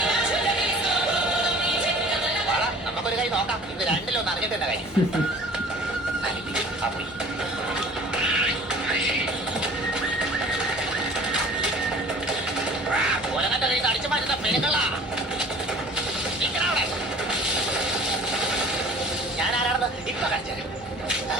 നമുക്കൊരു കൈ നോക്കാം. ഇത് രണ്ടിലൊന്ന് അറിഞ്ഞിട്ട് തന്നെ കൈ ആ പോയി. ഒലങ്ങന്റെ കൈ അടിച്ചു മാറ്റുന്ന പെണ്ണുങ്ങളാ. ഞാൻ ആരാണെന്ന് ഇപ്പൊ കാണിച്ചു.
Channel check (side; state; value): both; normal; correlation 0.46